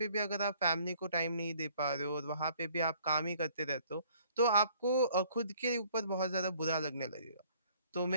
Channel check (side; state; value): both; inverted; correlation -0.59